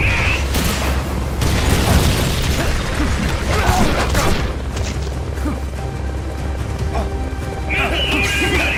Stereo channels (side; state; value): both; identical; correlation 1.00